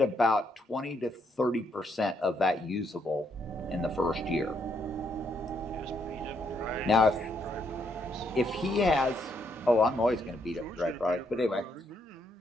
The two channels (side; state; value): both; normal; correlation 0.74